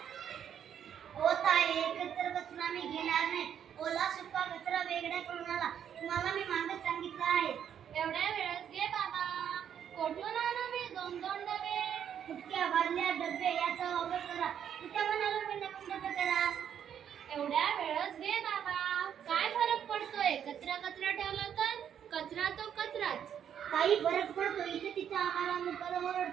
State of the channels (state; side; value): quieter; left; 8.9 dB